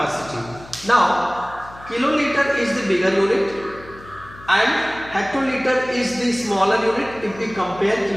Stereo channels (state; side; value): noise; left; hum, 20 dB below the sound